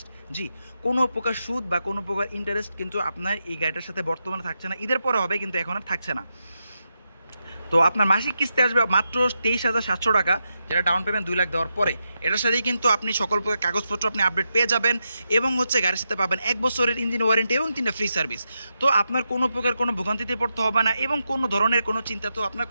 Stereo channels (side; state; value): both; inverted; correlation -0.86